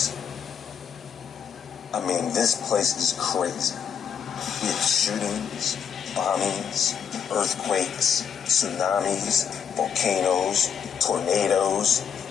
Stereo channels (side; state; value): right; quieter; 7.5 dB